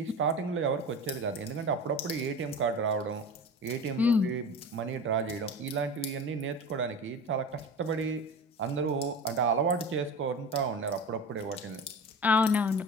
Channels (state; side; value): normal; both; correlation 0.31